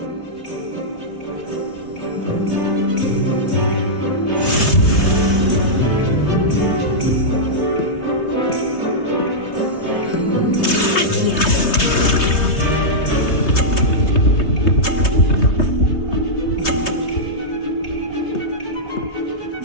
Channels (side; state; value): right; late; 3.2 ms